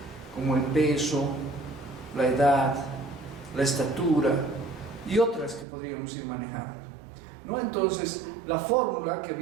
como el peso, la edad, la estatura y otras que podríamos ir manejando, ¿no? Entonces, la fórmula que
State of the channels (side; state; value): left; drops out; at 5.7 s